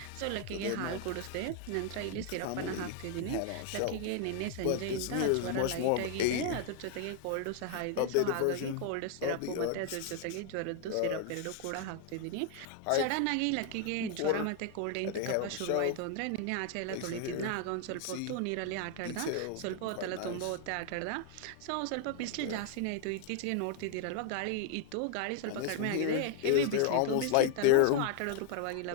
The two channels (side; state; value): both; different; correlation 0.00